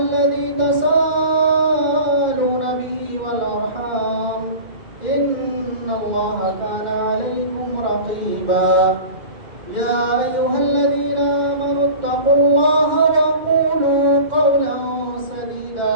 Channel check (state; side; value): late; left; 2.1 ms